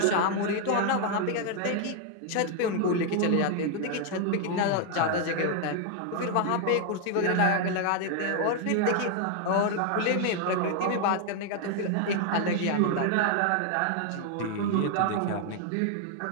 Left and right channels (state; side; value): different; both; correlation 0.00